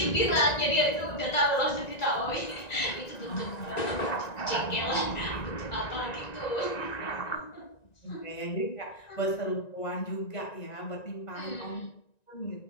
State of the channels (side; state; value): right; late; 1.9 ms